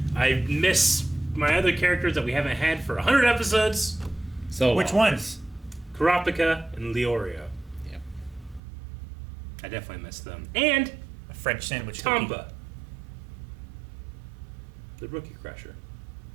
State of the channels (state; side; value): drops out; left; at 8.6 s